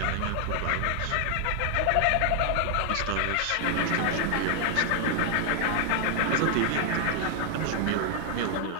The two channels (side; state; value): both; different; correlation 0.00